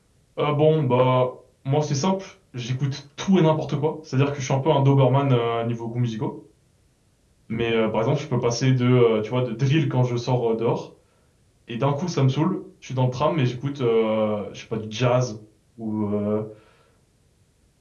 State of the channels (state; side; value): identical; both; correlation 1.00